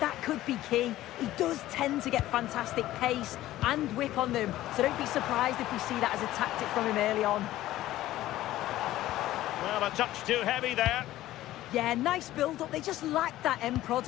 That could be key. He does tend to get fantastic pace and whip on them, so don't be surprised if we see that as a tactic from him early on. Well, a touch too heavy there. Yeah, nice build-up. They just lack that end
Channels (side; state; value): right; quieter; 15.0 dB